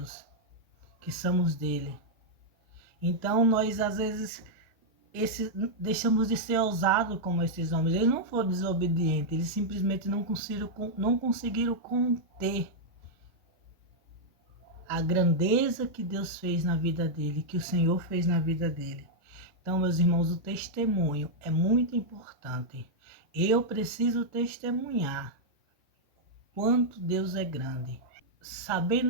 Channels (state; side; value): normal; both; correlation -0.04